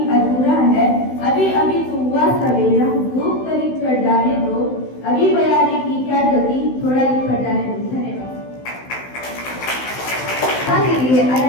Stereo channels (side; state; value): right; late; 16 ms